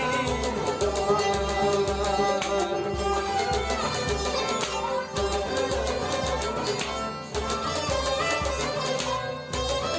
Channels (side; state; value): both; identical; correlation 1.00